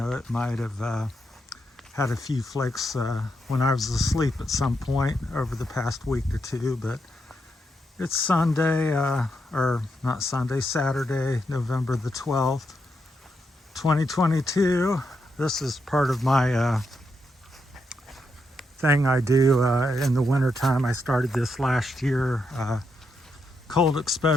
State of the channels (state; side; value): normal; both; correlation 0.82